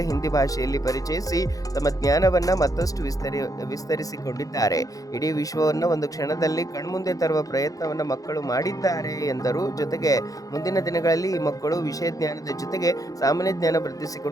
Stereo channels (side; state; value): right; late; 0.17 ms